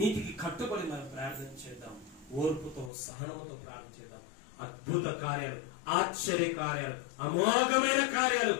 కట్టుబడి మనం ప్రార్థన చేద్దాం. ఓర్పుతో సహనముతో ప్రార్థన చేద్దాం. అద్భుత కార్యాలు, ఆశ్చర్య కార్యాలు, అమోఘమైన కార్యాలు,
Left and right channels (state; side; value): drops out; right; at 2.9 s